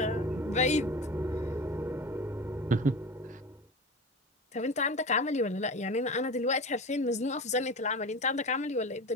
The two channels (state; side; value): normal; both; correlation 0.31